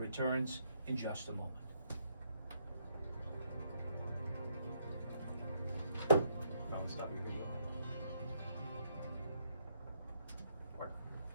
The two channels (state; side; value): inverted; both; correlation -0.74